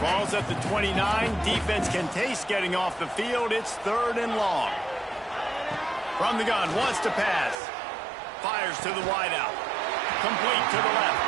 Ball's at the 29. Defense can taste getting off the field. It's 3rd and long. From the gun, wants to pass. Fires to the wideout. Complete to the left.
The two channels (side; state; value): left; drops out; at 7.6 s